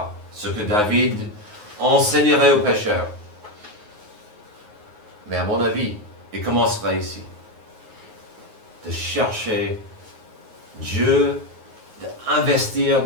ce que David enseignerait aux pécheurs. Mais à mon avis, il commencera ici. De chercher Dieu, d'investir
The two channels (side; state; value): left; late; 9.5 ms